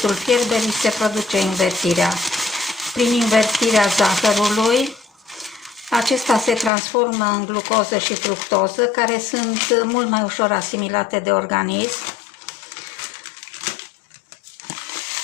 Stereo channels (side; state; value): right; drops out; at 6.7 s